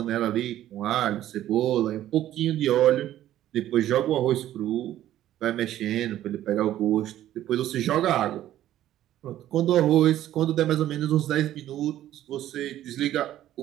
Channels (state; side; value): quieter; left; 12.8 dB